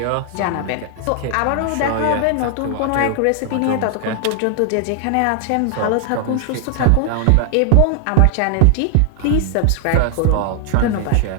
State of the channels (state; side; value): different; both; correlation 0.00